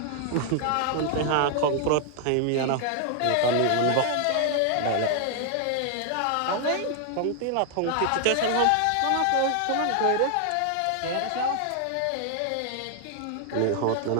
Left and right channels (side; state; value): both; different; correlation 0.00